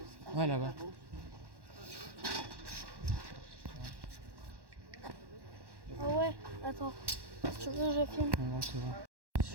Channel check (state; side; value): late; left; 1.1 ms